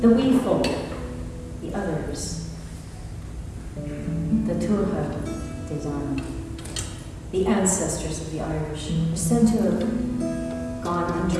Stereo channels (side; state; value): both; identical; correlation 1.00